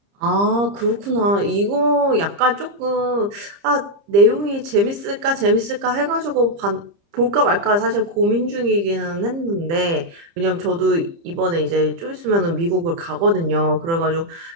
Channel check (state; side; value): late; left; 30 ms